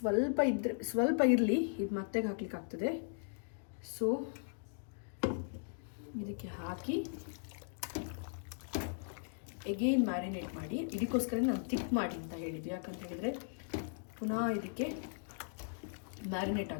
ಸ್ವಲ್ಪ ಇರಲಿ, ಇದು ಮತ್ತೆ ಹಾಕ್ಲಿಕ್ಕೆ ಆಗ್ತದೆ. ಸೊ ಇದಕ್ಕೆ ಹಾಕಿ ಎಗೇನ್ ಮ್ಯಾರಿನೇಟ್ ಮಾಡಿ. ಇದಕ್ಕೋಸ್ಕರ ನಾನು ಥಿಕ್ ಮಾಡಿ ಅಂತ ಹೇಳಿದ್ವಿ, ಯಾಕಂತ ಹೇಳಿದರೆ ಪುನಃ ಇದಕ್ಕೆ ಮ್ಯಾರಿನೇಟ್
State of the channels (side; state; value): right; silent; digital silence